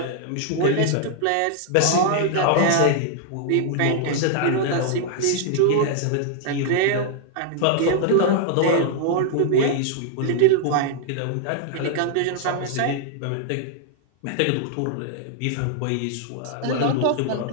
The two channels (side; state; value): both; different; correlation 0.00